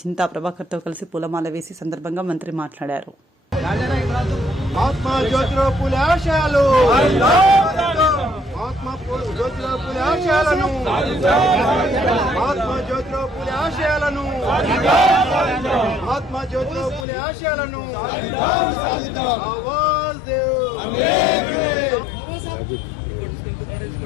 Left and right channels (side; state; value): right; drops out; at 17.1 s